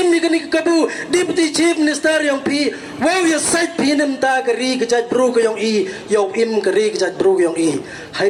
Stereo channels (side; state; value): both; identical; correlation 1.00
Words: ni kani kabu deputy chief minister yang pi wow ya site pi nem ta kari ke jaj bru ke yang i yo im kari ke jaj bru yang i